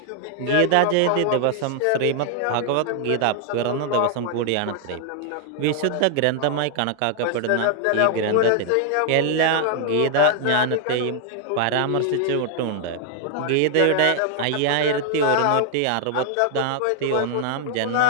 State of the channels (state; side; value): different; both; correlation 0.00